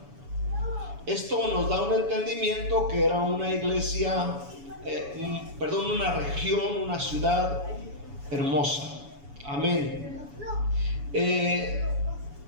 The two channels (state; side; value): late; left; 7.1 ms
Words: Esto nos da un entendimiento que era una iglesia, una región, una ciudad hermosa. Amén.